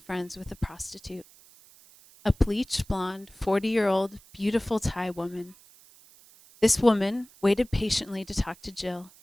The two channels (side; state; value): right; noise; hiss, 25 dB below the sound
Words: friends with a prostitute, a bleached blonde, 40-year-old, beautiful Thai woman. This woman waited patiently to talk to Jill.